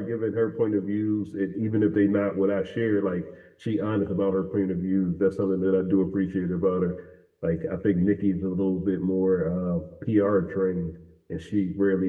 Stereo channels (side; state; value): both; identical; correlation 1.00